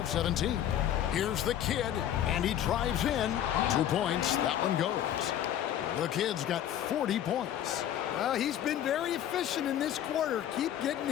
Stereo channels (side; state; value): right; quieter; 11.0 dB